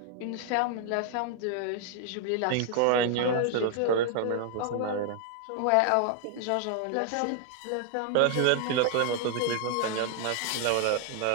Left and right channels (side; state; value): both; different; correlation 0.00